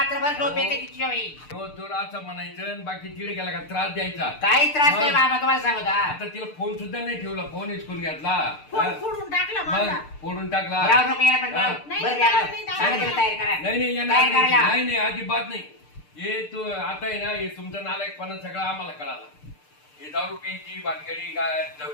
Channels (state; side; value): late; right; 6.7 ms